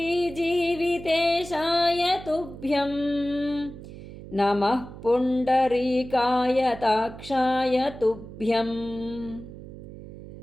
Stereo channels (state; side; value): noise; right; hum, 14 dB below the sound